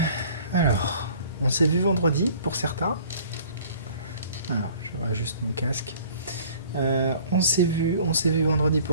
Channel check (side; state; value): both; inverted; correlation -0.51